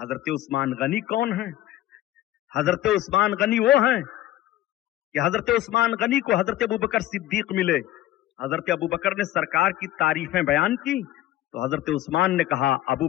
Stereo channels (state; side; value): quieter; right; 14.1 dB